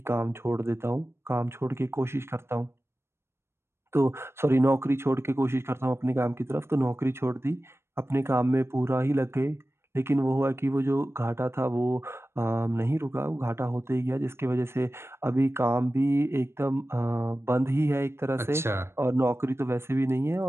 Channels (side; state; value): left; late; 0.12 ms